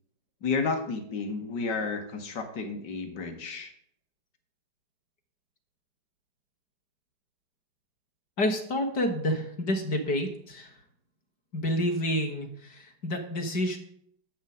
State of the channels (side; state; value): right; late; 5.0 ms